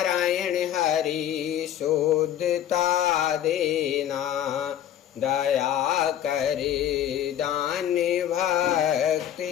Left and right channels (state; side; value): quieter; right; 10.8 dB